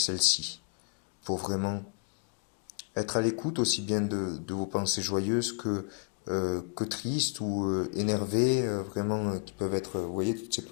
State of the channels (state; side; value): quieter; right; 39.3 dB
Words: pour vraiment être à l'écoute aussi bien de vos pensées joyeuses que tristes ou énervées, vraiment qui peuvent être, vous voyez, toutes ces